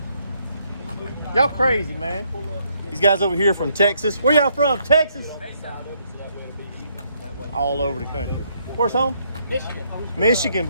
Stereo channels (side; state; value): both; inverted; correlation -0.71